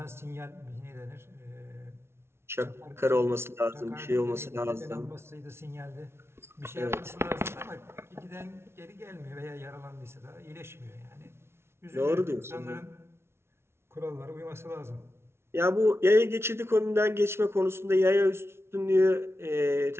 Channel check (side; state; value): left; late; 0.12 ms